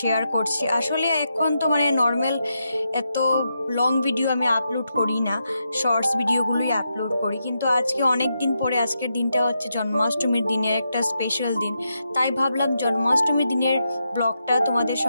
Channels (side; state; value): both; inverted; correlation -0.84